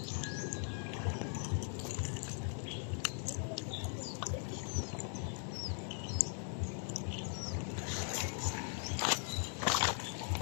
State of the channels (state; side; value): silent; right; 51 dB below the other